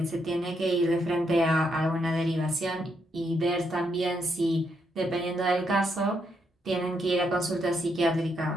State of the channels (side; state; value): both; normal; correlation 0.78